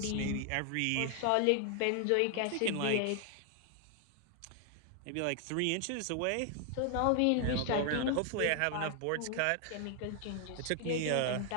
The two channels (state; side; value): different; both; correlation 0.00